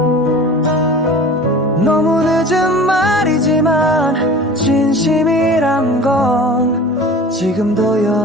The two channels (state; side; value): normal; both; correlation 0.40